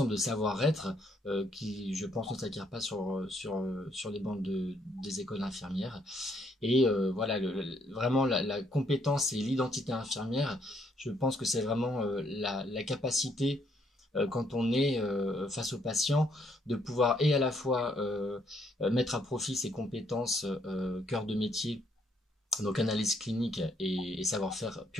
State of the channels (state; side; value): normal; both; correlation 0.70